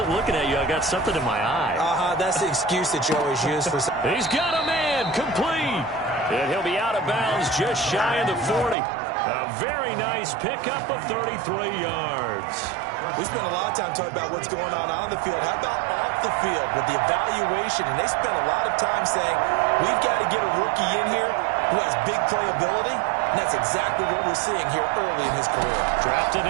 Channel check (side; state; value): left; drops out; at 8.8 s